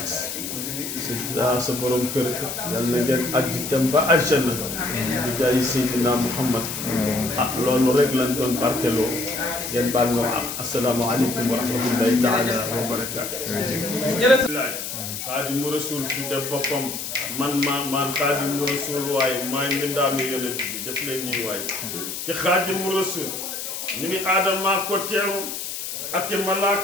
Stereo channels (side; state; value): left; noise; hiss, 6 dB below the sound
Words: sa borom kër yal na ngeen ajji dem ba aljanna di jaay Seydina Muhammad loolu rek lañ doon barkeloo ngeen baal ma assalaamu aleykum wa rahmatullahi taala wa barakaatu. Xaadimu Rasuul tudde boppam man Xaadimu Rasuul waaye maay mbindaanu yonent bi def leen nii waaye ci Xaadimu Rasuul ñu ni Aadama ko teeru ak i